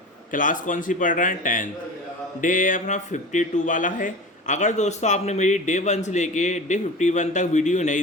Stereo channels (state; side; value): normal; both; correlation 0.34